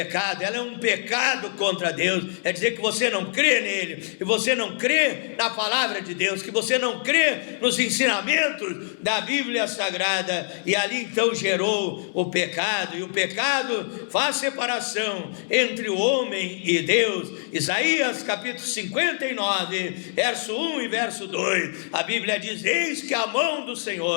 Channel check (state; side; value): silent; right; 62 dB below the other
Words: ela é um pecado contra Deus. É dizer que você não crê nele, que você não crê na palavra de Deus, que você não crê nos ensinamentos da Bíblia Sagrada, e ali então gerou o pecado, e o pecado faz separação entre o homem e Deus. Isaías capítulo 59, verso 1 e verso 2, a Bíblia diz: eis que a mão do